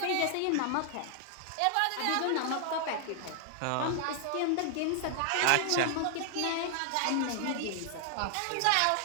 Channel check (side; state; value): both; different; correlation 0.00